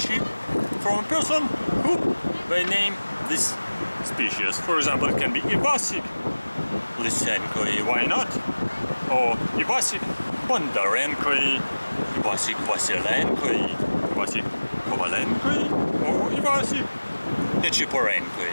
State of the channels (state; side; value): inverted; both; correlation -1.00